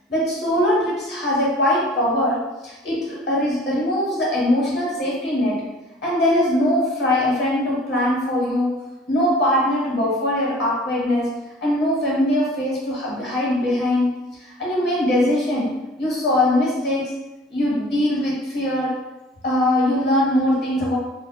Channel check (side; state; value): both; normal; correlation 0.47